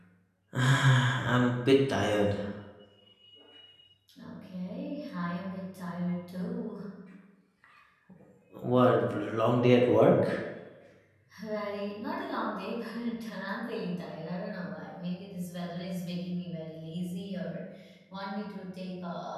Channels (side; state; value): both; identical; correlation 1.00